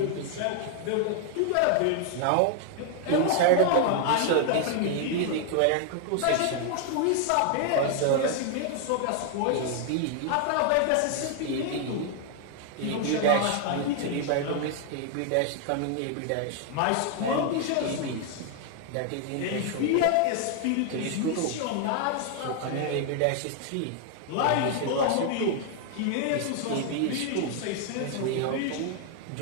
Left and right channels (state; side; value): different; both; correlation 0.00